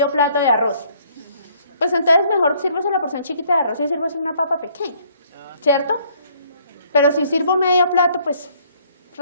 plato de arroz. Pues entonces mejor sírvase la porción chiquita de arroz y sírvase una papa pequeña, ¿cierto? Pero si sirvo medio plato, pues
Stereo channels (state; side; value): inverted; both; correlation -0.63